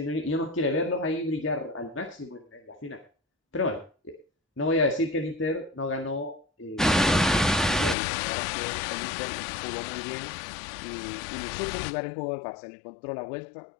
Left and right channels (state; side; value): drops out; right; at 8.0 s